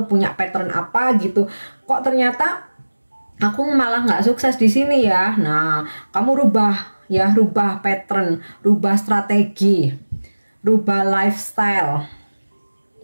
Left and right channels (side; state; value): both; inverted; correlation -1.00